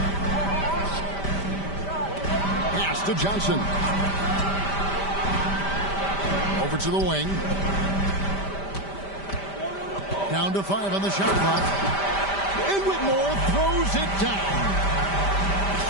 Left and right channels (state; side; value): late; right; 5.1 ms